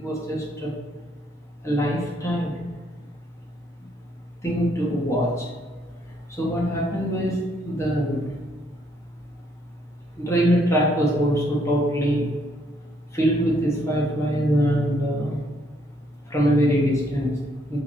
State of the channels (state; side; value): normal; both; correlation 0.70